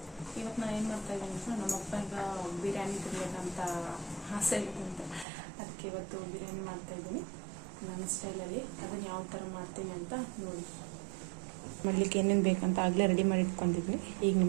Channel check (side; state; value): left; drops out; at 5.2 s